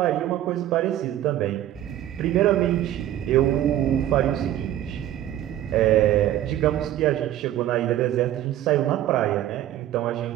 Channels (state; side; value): quieter; left; 12.6 dB